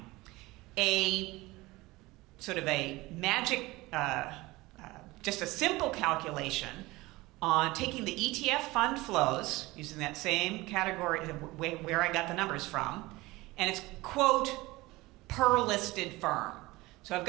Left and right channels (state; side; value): quieter; left; 20.7 dB